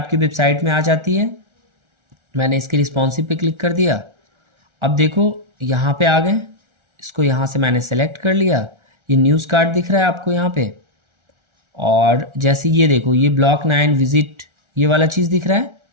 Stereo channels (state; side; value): late; left; 1.4 ms